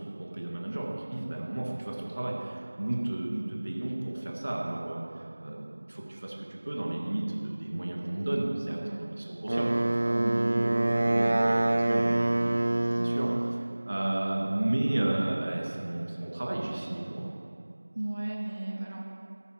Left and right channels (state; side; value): inverted; both; correlation -1.00